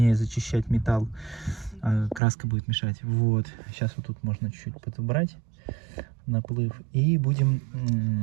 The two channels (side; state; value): left; drops out; at 2.2 s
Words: зачищать металл. Краска будет мешать. Вот. Сейчас вот тут можно чуть-чуть подобрать наплыв. И будем